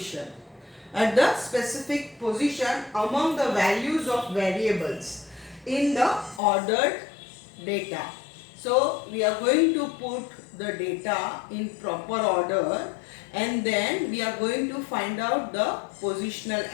At the specific position among the values of variables in the ordered data. So we are going to put the data in proper order and then we are going to find out the positional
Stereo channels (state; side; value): drops out; right; at 6.4 s